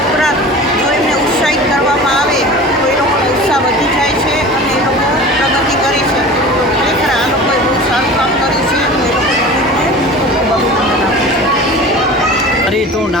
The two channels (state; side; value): normal; both; correlation 0.37